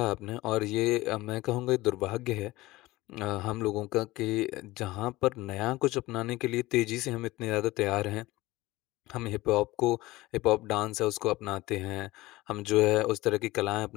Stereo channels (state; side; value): quieter; right; 19.2 dB